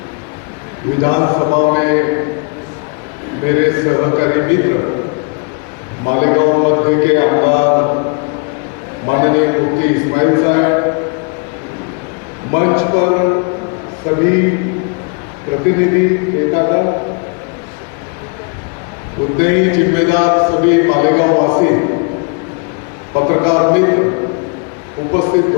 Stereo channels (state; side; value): quieter; right; 36.4 dB